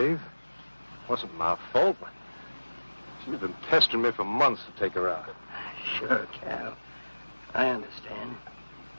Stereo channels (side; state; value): both; inverted; correlation -1.00